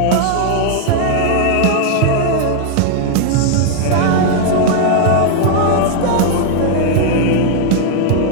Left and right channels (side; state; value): both; different; correlation 0.00